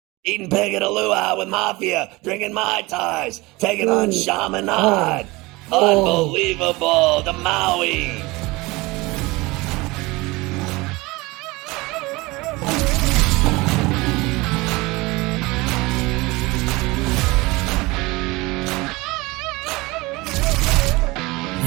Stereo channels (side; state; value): left; quieter; 22.6 dB